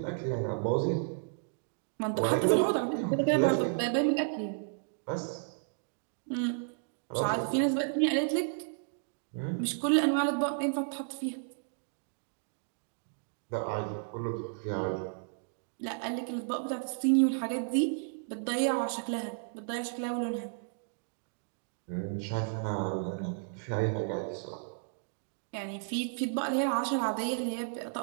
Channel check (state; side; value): silent; left; digital silence